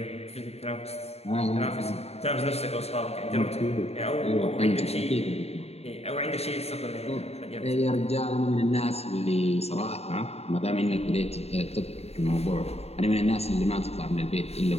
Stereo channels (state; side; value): late; right; 0.30 ms